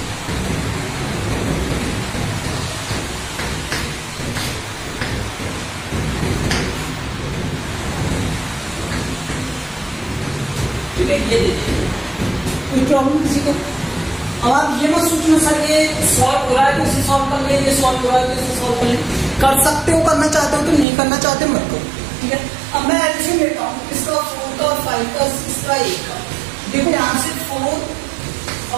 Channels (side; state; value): left; drops out; at 20.9 s